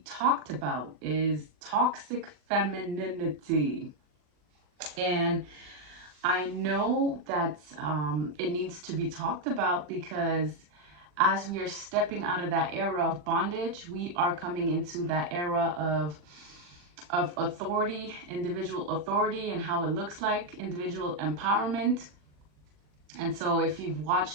talked about is toxic femininity. And I know that it needs to be talked about because as we are stepping out of that era of bondage, we are coming into that era of authority, individual authority, and how it looks like, individual empowerment. And so if you've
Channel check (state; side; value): late; left; 40 ms